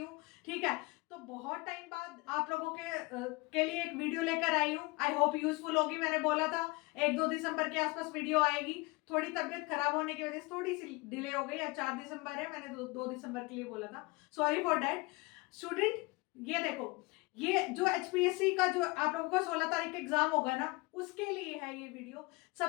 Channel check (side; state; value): right; quieter; 25.1 dB